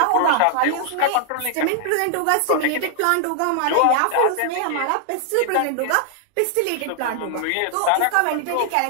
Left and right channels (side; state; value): both; different; correlation 0.00